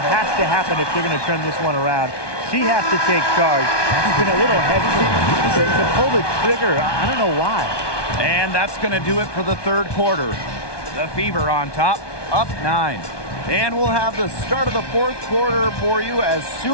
has to happen if they're going to turn this one around. She has to take charge. She's been a little hesitant to pull the trigger. I don't know why. And that's going to do it for the third quarter. The Fever on top, up 9. And we'll have the start of the fourth quarter for you as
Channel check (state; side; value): late; right; 1.2 ms